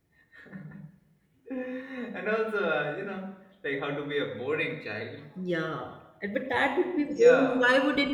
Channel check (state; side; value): identical; both; correlation 1.00